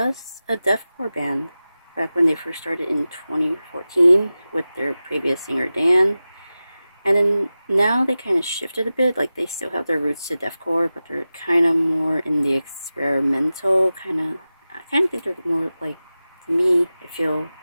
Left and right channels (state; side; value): inverted; both; correlation -0.95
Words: a deathcore band back when they first started in 2014 with their previous singer Dan. And then now they kind of shifted a bit, like they still have their roots to deathcore, but they're kind of more in the experimental I kind of think they're more like, to me, I feel